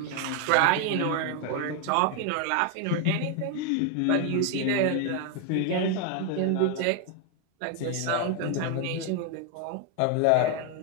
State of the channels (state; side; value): different; both; correlation 0.01